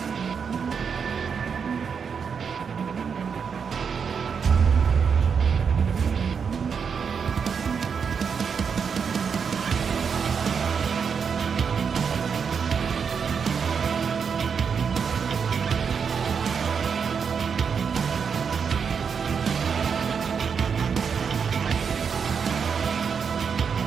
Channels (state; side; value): quieter; left; 6.4 dB